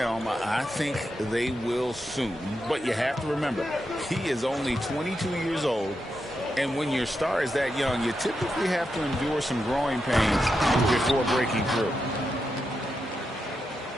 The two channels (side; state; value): both; normal; correlation 0.86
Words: I think they will soon. But you have to remember, he is only 22 years old. And when your star is that young, you typically have to endure some growing pains before breaking through.